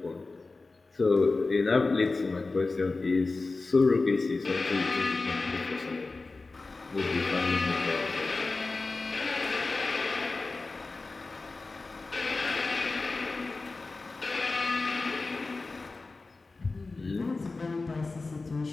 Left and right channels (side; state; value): right; quieter; 3.6 dB